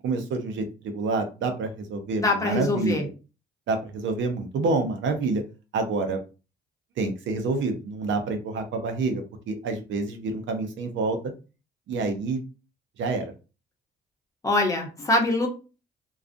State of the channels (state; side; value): normal; both; correlation 0.30